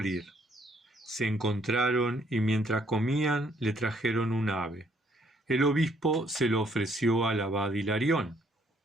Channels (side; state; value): both; normal; correlation 0.67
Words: Se encontraron y mientras comían le trajeron un ave. El obispo se lo ofreció al abad Hilarión.